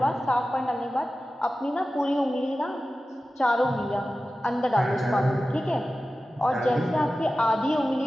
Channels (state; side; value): normal; both; correlation 0.95